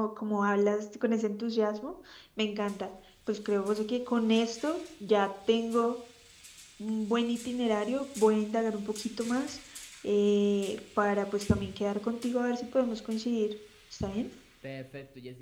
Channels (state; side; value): identical; both; correlation 1.00